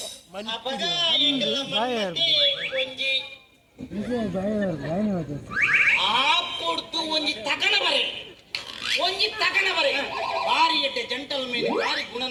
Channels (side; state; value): both; identical; correlation 1.00